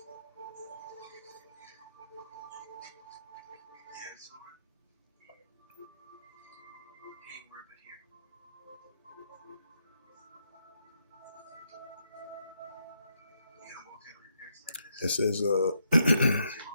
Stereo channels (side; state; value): both; inverted; correlation -0.78